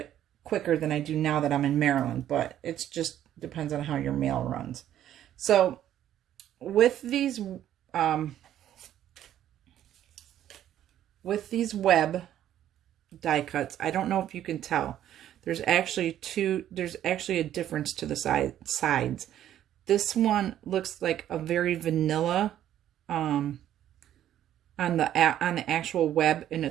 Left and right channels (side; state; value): left; quieter; 11.5 dB